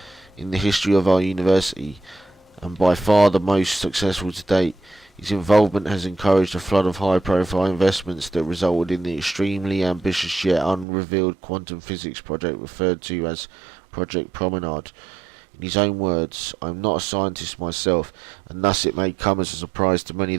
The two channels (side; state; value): left; drops out; at 10.9 s